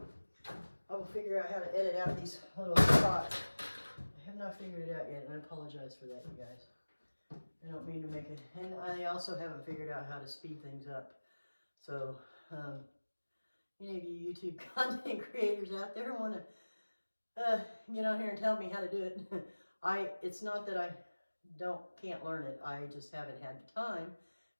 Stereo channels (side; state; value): both; inverted; correlation -1.00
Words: I will figure out how to edit out these little spots. I have not figured it out yet, and I apologize for that, you guys. I don't mean to make it, and I also haven't figured out how to speed things up. So, any of you YouTube content creators out there want to get on here and tell me how to do it. It's not that I can't learn it. I just haven't had the time